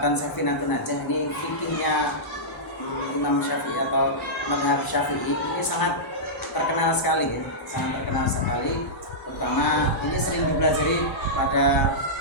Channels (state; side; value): normal; both; correlation -0.13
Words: Safinatun Najah, ini fikihnya Imam Syafi'i atau mazhab Syafi'i, ini sangat terkenal sekali ya, sangat terkenal sekali. Terutama ini sering dipelajari pada